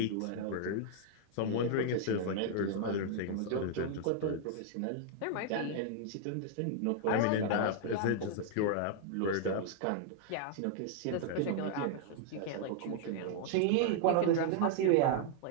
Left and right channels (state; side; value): different; both; correlation -0.01